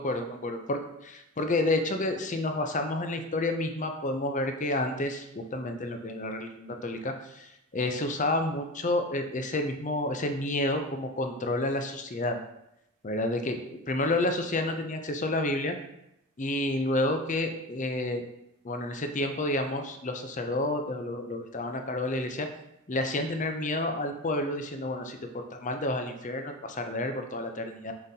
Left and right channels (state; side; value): normal; both; correlation 0.28